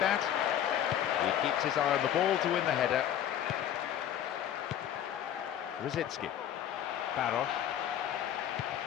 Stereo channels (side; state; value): right; quieter; 10.5 dB